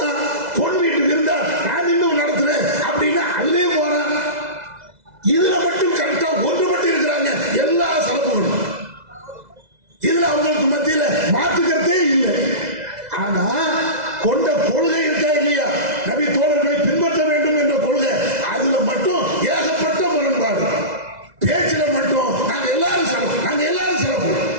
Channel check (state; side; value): late; left; 2.0 ms